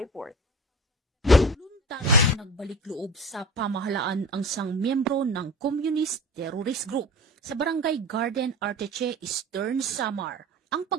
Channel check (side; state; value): both; normal; correlation 0.37